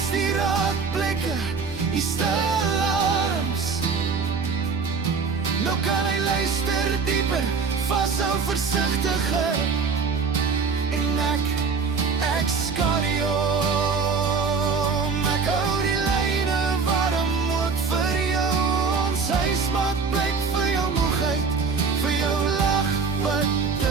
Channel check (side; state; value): left; quieter; 5.1 dB